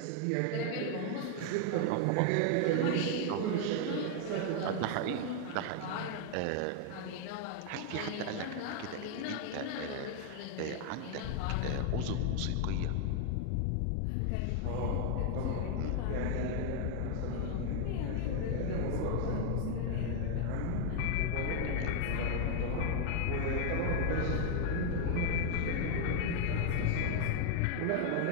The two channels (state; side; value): different; both; correlation 0.01